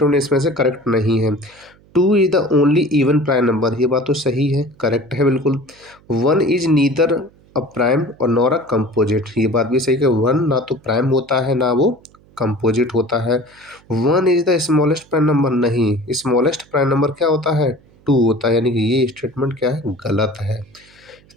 इसमें से करेक्ट नहीं है। 2 is the only even prime number, ये बात तो सही है, करेक्ट है बिल्कुल। 1 इज़ नीदर अ प्राइम और नॉर अ कंपोजिट, ये बात भी सही है कि 1 ना तो प्राइम होता है ना वो कंपोजिट होता है। 1 is the smallest prime number, नहीं, स्मॉलेस्ट प्राइम नंबर क्या होता है, 2 होता है, यानी कि ये स्टेटमेंट क्या है, गलत है।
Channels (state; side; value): noise; right; hum, 29 dB below the sound